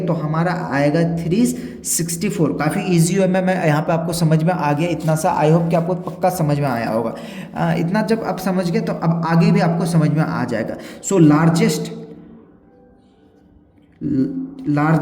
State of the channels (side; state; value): both; identical; correlation 1.00